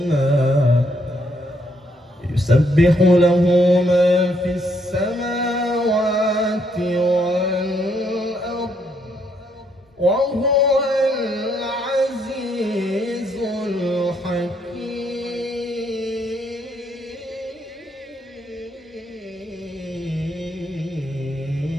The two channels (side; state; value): both; normal; correlation 0.73